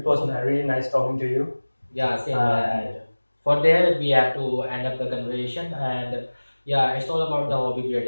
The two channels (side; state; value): both; inverted; correlation -1.00